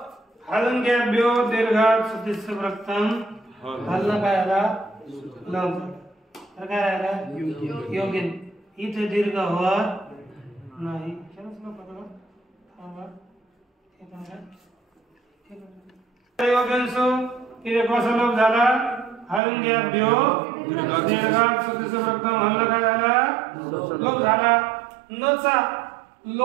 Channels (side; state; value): left; drops out; at 19.4 s